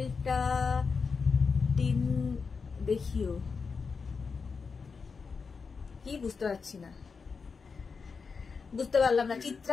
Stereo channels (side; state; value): right; quieter; 5.1 dB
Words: টিন দেখিও, কি বুঝতে পারছি না, বুঝতে পারলাম না।